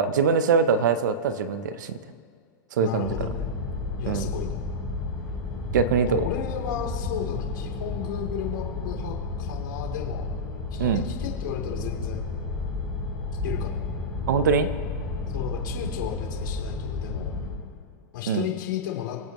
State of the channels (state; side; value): normal; both; correlation -0.13